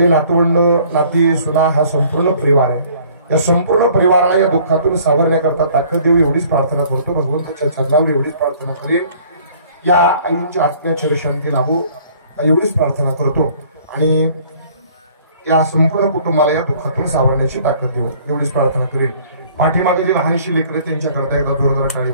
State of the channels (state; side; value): inverted; both; correlation -0.55